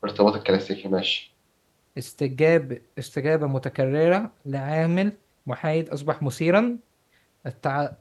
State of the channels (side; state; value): both; identical; correlation 1.00